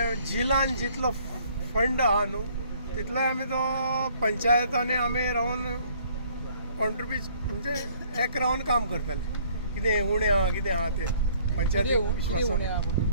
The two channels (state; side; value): inverted; both; correlation -0.60